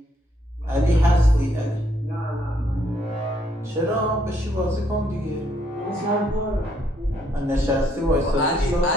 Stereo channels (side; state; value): both; normal; correlation 0.71